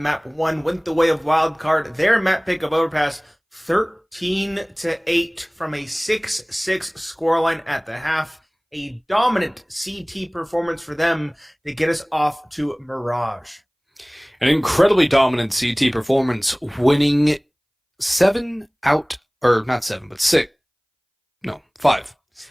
1 went the way of Wildcard. Their map pick of Overpass 13-8 from a 6-6 scoreline at the half. A dominant CT performance for them to get us off to Mirage. An incredibly dominant CT performance, winning 5.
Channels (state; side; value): identical; both; correlation 1.00